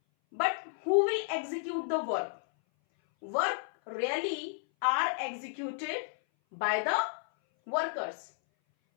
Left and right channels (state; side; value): silent; right; 56 dB below the other